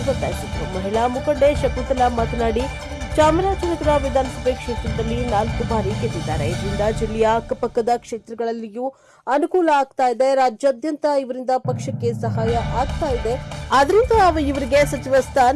ಒತ್ತಾಯಿಸಿದರು. ಮಹಿಳಾ ಮುಖಂಡೆ ಶಕುಂತಲಾ ಮಾತನಾಡಿ, ಚಾಮರಾಜನಗರ ವಿಧಾನಸಭೆ ಕ್ಷೇತ್ರದಲ್ಲಿ 4 ಬಾರಿ ಗೆದ್ದಿದ್ದಾರೆ. ಇದರಿಂದ ಜಿಲ್ಲೆಯ ಅಕ್ಕಪಕ್ಕದ ಕ್ಷೇತ್ರಗಳಲ್ಲಿಯೂ ಅನುಕೂಲ ಆಗ್ತಾ ಇದೆ. ರಾಜ್ಯಾದ್ಯಂತ ಇವರಿಂದ ಪಕ್ಷಕ್ಕೆ ಸಹಾಯ ಆಗ್ತಾ ಇದೆ. ಆದ್ರಿಂದ ಇವರಿಗೆ ಸಚಿವ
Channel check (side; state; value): both; identical; correlation 1.00